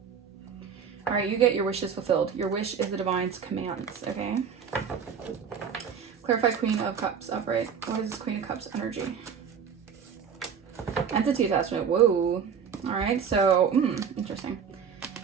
All right, you get your wishes fulfilled. Your wish is the divine's commands, okay? Clarify Queen of Cups upright. What is this Queen of Cups energy? Entity attachment. Whoa. All right, so, interesting.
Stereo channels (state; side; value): quieter; left; 7.0 dB